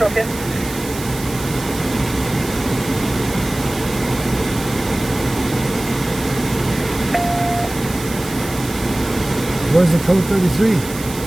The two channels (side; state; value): right; noise; hiss, 12 dB below the sound